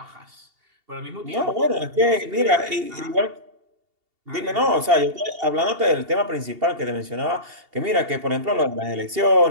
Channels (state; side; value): late; left; 2.8 ms